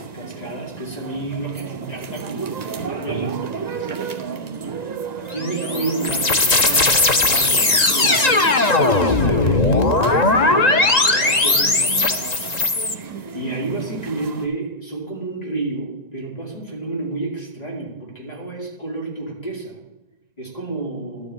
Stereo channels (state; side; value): late; right; 1.9 ms